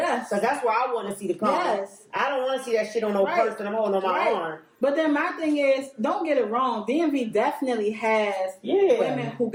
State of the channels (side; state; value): both; identical; correlation 1.00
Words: Because that's where I want to see the comment. Yes. I don't want to see that shit on no purse that I'm holding on my arm. But then my thing is, don't get it wrong. DMV definitely has women who